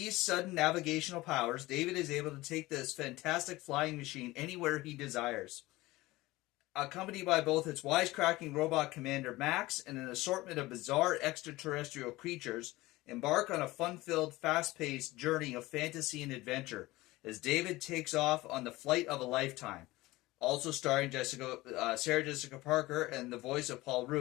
sudden navigational powers, David is able to take this fantastic flying machine anywhere he desires. Accompanied by both its wisecracking robot commander Max and an assortment of bizarre extraterrestrial creatures, embark on a fun-filled, fast-paced journey of fantasy and adventure as David takes off on the flight of a lifetime. Also starring Sarah Jessica Parker and the voice of Paul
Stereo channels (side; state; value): right; quieter; 19.4 dB